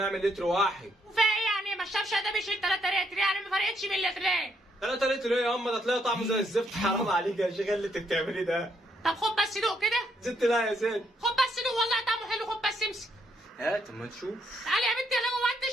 يعمل لتر واحد. وفي ايه يعني ما الشبشب ده بيشيل 3 لتر يعني ما فرقتش من لترين. 3 لتر ايه يا امه؟ ده تلاقي طعمه زي الزفت. حرام عليك يا شيخ اللي انت بتعمليه ده. طب خد بس دوق كده. زدت لا يا زين. خد بس دوق والله طعمه حلو. خد بس امسك. هات اما تشوف. تعالي يا بنتي يلا جوه انت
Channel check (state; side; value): normal; both; correlation 0.74